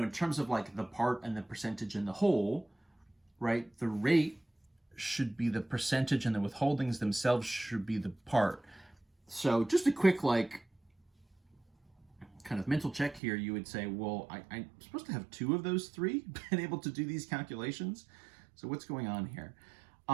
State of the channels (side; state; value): left; drops out; at 13.2 s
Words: terms of like the part and the percentage and the whole, right? The rate should be the percentage and the withholdings themselves should be the part. So just a quick, like, kind of mental check here. You would say, well, I'm supposed to have 2 of those 3 been able to do these calculations. So what's going on here?